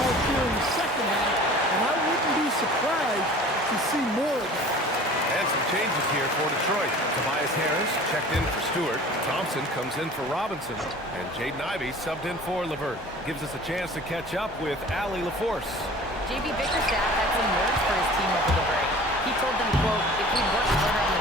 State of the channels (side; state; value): both; normal; correlation 0.44